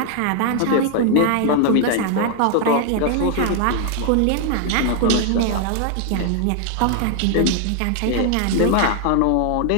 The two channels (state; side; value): different; both; correlation 0.00